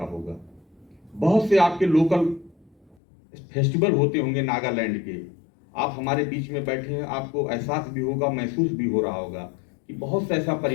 होगा। बहुत से आपके लोकल फेस्टिवल होते होंगे नागालैंड के, आप हमारे बीच में बैठे हैं, आपको एहसास भी होगा, महसूस भी हो रहा होगा कि बहुत सा ऐसा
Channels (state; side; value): drops out; right; at 3.0 s